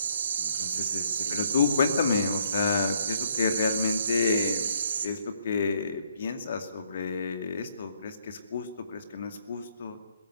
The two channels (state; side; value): inverted; both; correlation -0.67